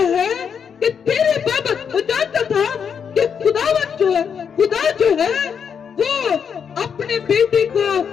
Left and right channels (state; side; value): quieter; right; 7.1 dB